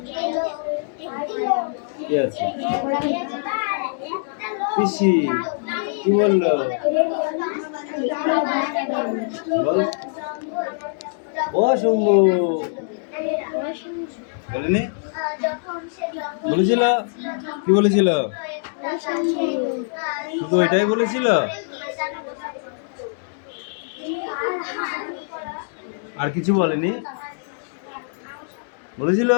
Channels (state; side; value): silent; right; digital silence